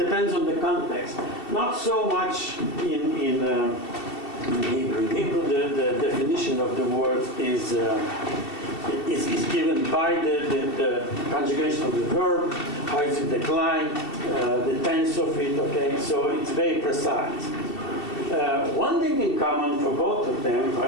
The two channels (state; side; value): late; right; 2.7 ms